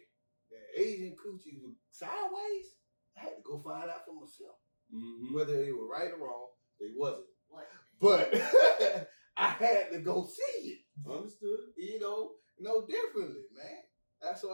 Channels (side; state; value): both; inverted; correlation -1.00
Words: that Asian coochie was sideways, I had to go find out for myself. Mm-hmm. Whether they were right or wrong, they wasn't. What? But I had to go see it. Understood. You know, no differently, man. That's